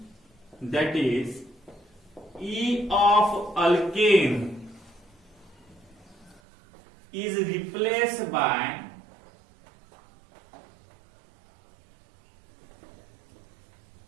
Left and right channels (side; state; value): left; drops out; at 6.4 s